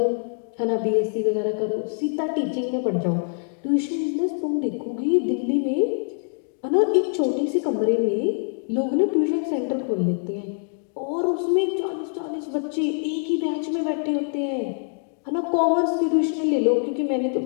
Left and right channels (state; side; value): silent; right; 60 dB below the other